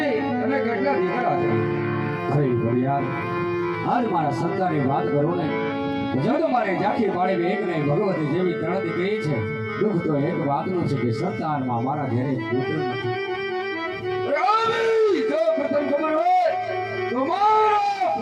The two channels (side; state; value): both; identical; correlation 1.00